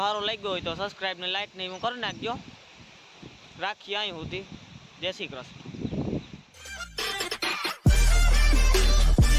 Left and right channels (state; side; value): identical; both; correlation 1.00